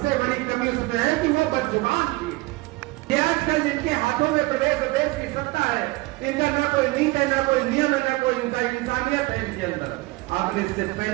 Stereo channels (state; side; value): quieter; left; 21.8 dB